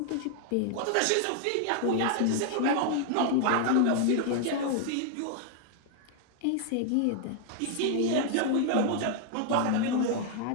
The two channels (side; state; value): both; different; correlation 0.00